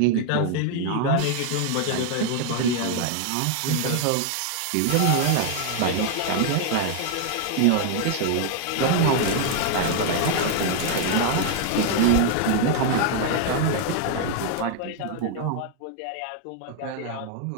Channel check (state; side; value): different; both; correlation 0.00